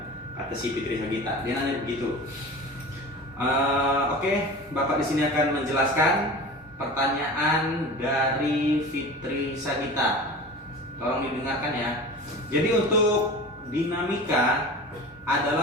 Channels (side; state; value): both; normal; correlation 0.35